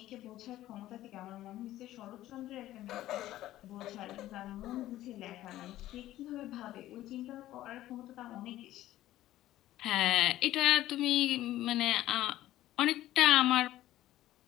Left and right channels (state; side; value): quieter; right; 14.5 dB